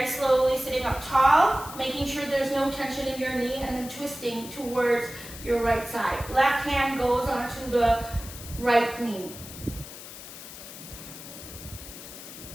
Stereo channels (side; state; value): left; noise; hiss, 13 dB below the sound